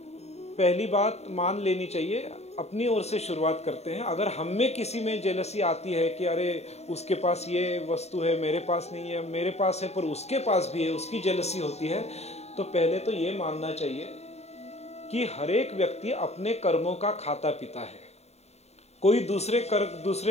पहली बात मान लेनी चाहिए, अपनी ओर से शुरुआत करते हैं। अगर हम में किसी में जेलसी आती है कि अरे उसके पास ये वस्तु है, मेरे पास नहीं है, मेरे पास है पर उसके पास भी है, उसकी जेलसी होती है, तो पहले तो ये मानना चाहिए कि हर एक व्यक्ति अपने कर्मों का खाता पिता है, कोई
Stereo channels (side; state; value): right; late; 0.31 ms